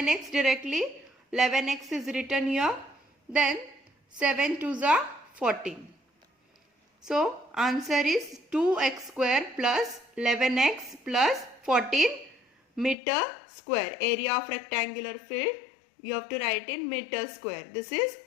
directly 11x is written here. Then 7 2s are 14. So answer is 2x square plus 11x plus 14 meter square. Area of rectangular field you have to write in meter square. This is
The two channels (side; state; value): right; drops out; at 13.0 s